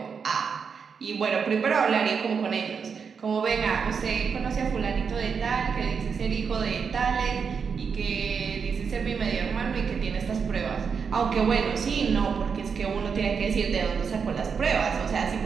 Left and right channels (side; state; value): left; quieter; 6.1 dB